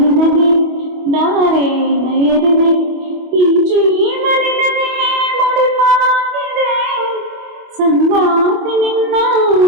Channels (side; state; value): left; late; 25 ms